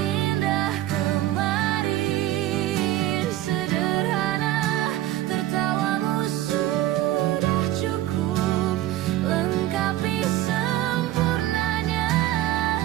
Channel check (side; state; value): left; quieter; 14.5 dB